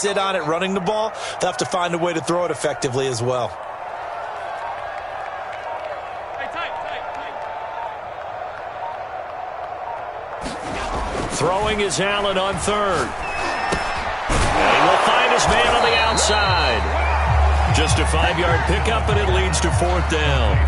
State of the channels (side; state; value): both; identical; correlation 1.00